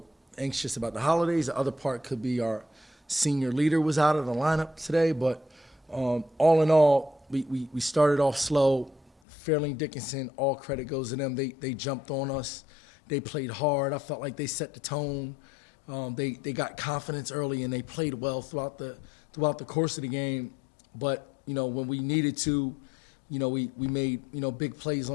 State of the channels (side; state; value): right; drops out; at 9.1 s